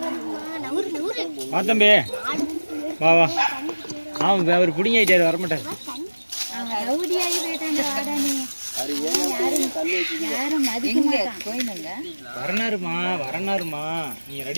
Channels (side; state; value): both; inverted; correlation -1.00